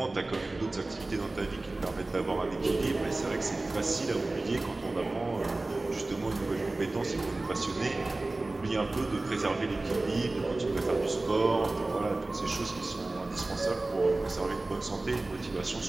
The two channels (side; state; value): left; quieter; 3.0 dB